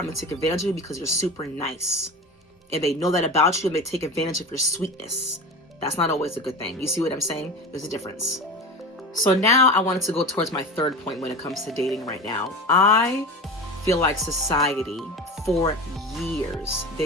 gonna take advantage of you because you're super nice. And they know that about you and they take advantage of your sweetness. That's not always a good thing. You see what I'm saying? There's a difference. So now I wanted to go towards my third point when it comes to dating right now. I feel like society, for years,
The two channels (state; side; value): normal; both; correlation 0.29